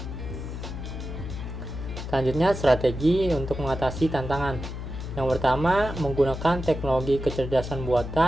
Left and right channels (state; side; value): noise; left; hum, 7 dB below the sound